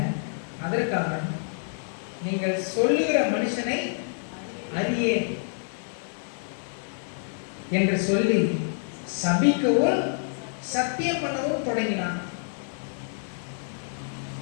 அதற்காக நீங்கள் சொல்லுகிற மனுஷனை அறியேன் என்று சொல்லி சபிக்கவும் சத்தியம் பண்ணவும் தொடங்கினான்.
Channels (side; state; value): right; silent; digital silence